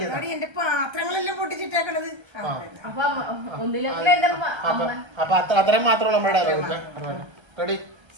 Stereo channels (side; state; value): left; late; 1.3 ms